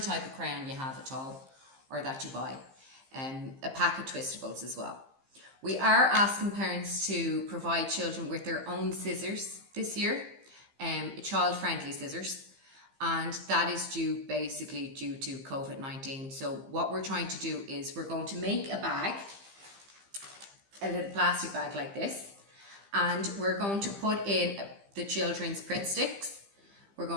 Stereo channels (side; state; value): left; late; 15 ms